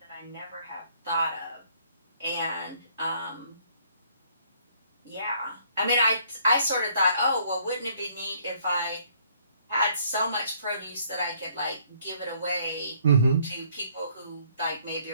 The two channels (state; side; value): inverted; both; correlation -0.63